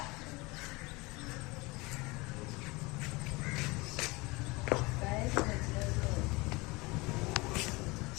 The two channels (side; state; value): right; quieter; 24.2 dB